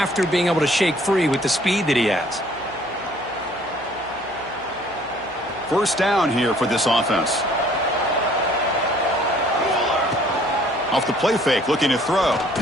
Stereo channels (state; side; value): noise; right; hum, 24 dB below the sound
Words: being able to shake free with the speed that he has. First down here for this offense. Off the play fake, looking to throw.